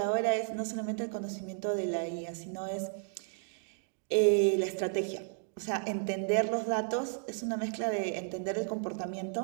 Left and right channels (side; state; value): left; silent; digital silence